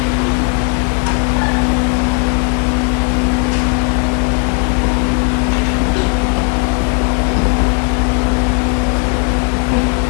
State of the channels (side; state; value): right; quieter; 37.0 dB